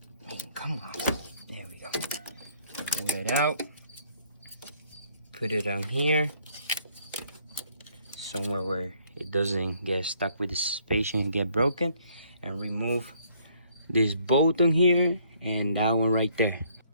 Come on. There we go. Pull it out. Put it on here. Somewhere where it doesn't get stuck with the suspension and get broken. And remove this bolt on here and that one right there.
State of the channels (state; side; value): inverted; both; correlation -0.65